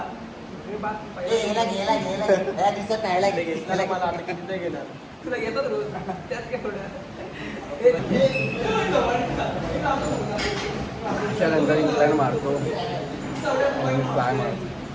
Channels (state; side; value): identical; both; correlation 1.00